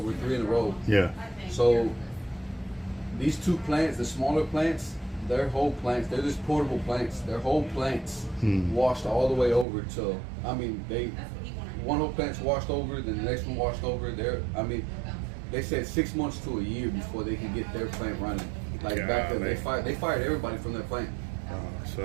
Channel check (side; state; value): left; drops out; at 9.7 s